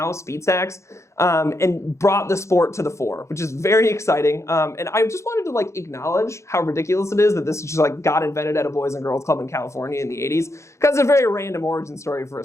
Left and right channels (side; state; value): right; late; 0.14 ms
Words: Speed Stacks, and brought the sport to the fore, which is very exciting. And I just wanted to like acknowledge how ridiculous it is that this just like got invented at a Boys and Girls Club in California in the 80s, because it's a very random origin story for a